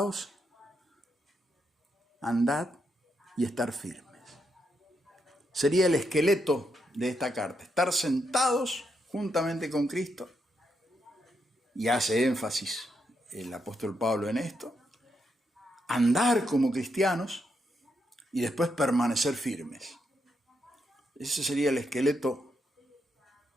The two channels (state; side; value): normal; both; correlation 0.80